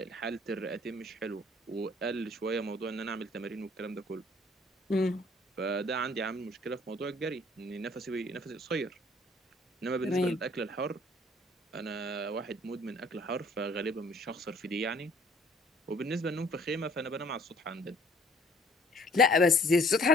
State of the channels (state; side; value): normal; both; correlation 0.56